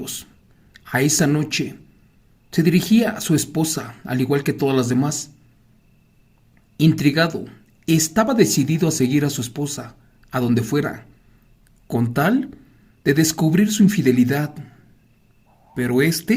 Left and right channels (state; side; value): identical; both; correlation 1.00